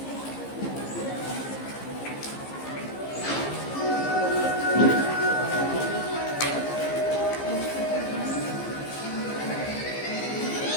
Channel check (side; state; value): right; late; 15 ms